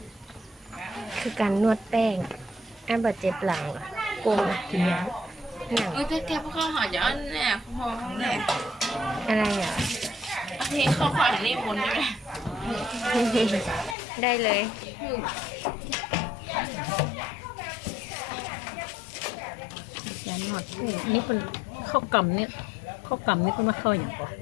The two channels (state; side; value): drops out; right; at 14.0 s